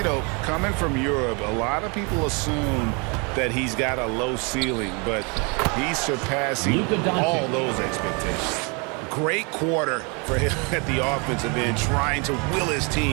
know, coming from Europe, a lot of people assume that he's got a low ceiling, but he's surpassing all those expectations. Great quarter for him at the offensive end, trying to will his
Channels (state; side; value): quieter; left; 32.1 dB